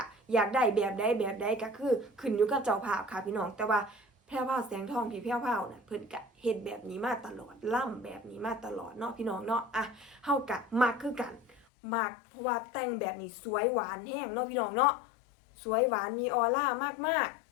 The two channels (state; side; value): drops out; right; at 11.7 s